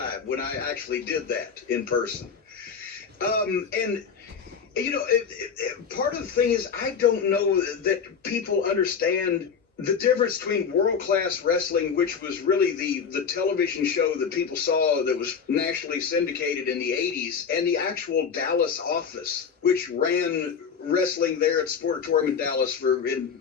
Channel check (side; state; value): right; quieter; 6.4 dB